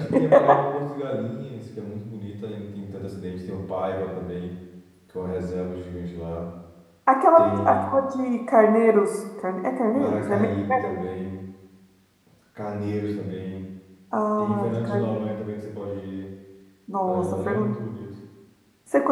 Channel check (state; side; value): identical; both; correlation 1.00